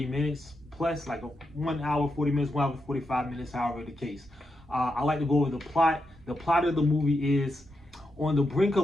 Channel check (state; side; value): normal; both; correlation 0.85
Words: minutes plus, like 1 hour 40 minutes, 1 hour 45 minutes, however the case. I like to go over the plot. The plot of the movie is, on the brink